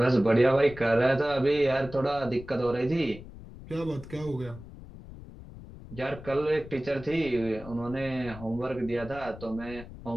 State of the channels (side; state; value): left; noise; rumble, 15 dB below the sound